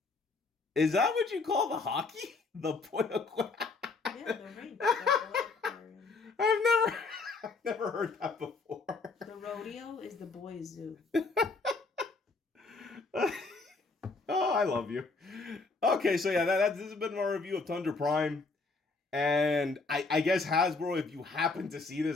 Is that what you call the hockey? The boy aquarium? Yeah, the rink. The boy aquarium. I've never heard that before. The rodeo is the boy zoo. Oh, I love you. Okay, so yeah, this has been my review of Tundra Prime. And I guess Hasbro, if you happen to see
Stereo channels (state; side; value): quieter; right; 4.0 dB